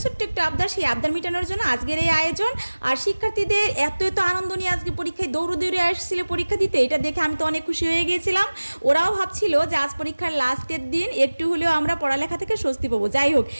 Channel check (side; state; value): both; inverted; correlation -1.00